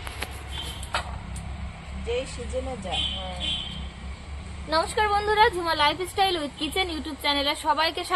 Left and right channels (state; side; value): identical; both; correlation 1.00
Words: যেই সিজনে যায়। নমস্কার বন্ধুরা, Jhuma lifestyle with kitchen YouTube চ্যানেলে সবাইকে